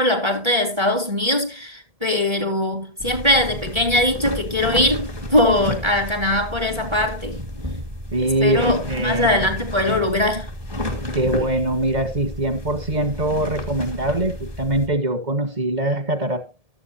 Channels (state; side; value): late; left; 1.4 ms